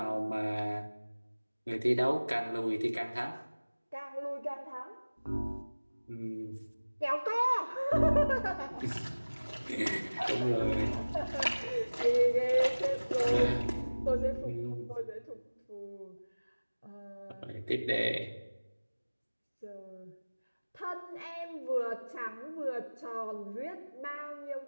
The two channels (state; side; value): inverted; both; correlation -1.00